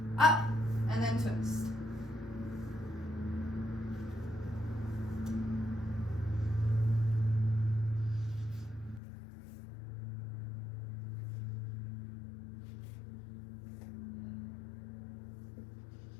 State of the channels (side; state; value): right; drops out; at 9.0 s